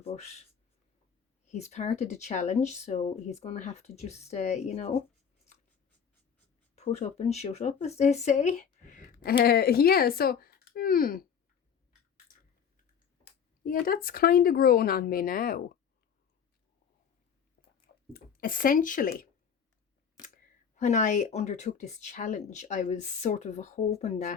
he's part of the challenge, so he's going to have to just, you know, put up and shut up, as they say. Yeah, so, yeah, that's kind of grown on me now. Essentially, when I undertook this challenge, I was sort of hoping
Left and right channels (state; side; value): quieter; right; 7.3 dB